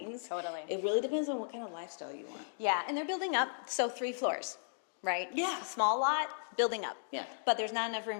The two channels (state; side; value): silent; right; digital silence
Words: Totally. It really depends on what kind of lifestyle you want. Yeah, and they're building up, so 3 floors. right? Yeah. Small lot, building up. Yeah. But there's not enough